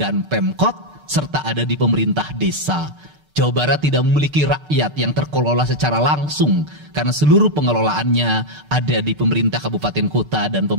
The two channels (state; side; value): late; left; 6.6 ms